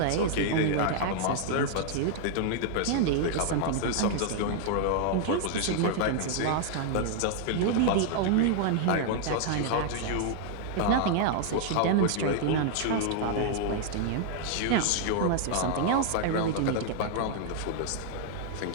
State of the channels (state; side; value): different; both; correlation -0.01